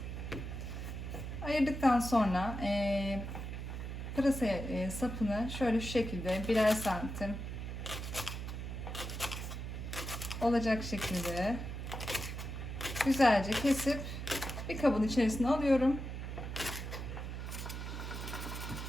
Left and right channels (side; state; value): right; noise; hum, 6 dB below the sound